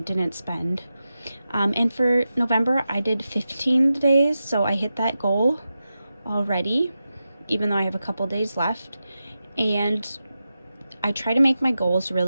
spend. And for November, I did 15 days, so I hit that goal already, even though I have a couple days left. And I try to make my goals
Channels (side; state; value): both; inverted; correlation -0.91